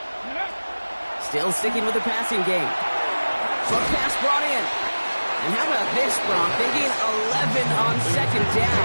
Still sticking with the passing game. Short pass brought in. And how about this, Bronk? They gain 11 on second down.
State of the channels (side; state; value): both; inverted; correlation -1.00